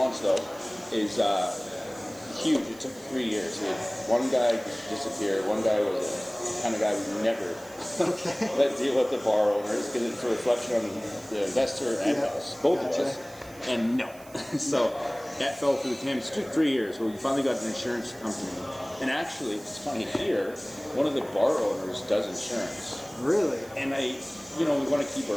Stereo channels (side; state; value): right; noise; hiss, 22 dB below the sound